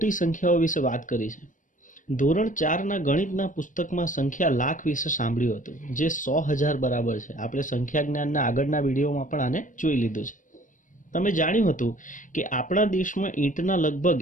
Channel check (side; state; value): right; late; 0.38 ms